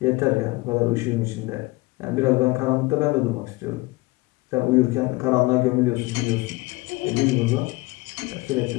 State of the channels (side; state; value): right; quieter; 22.2 dB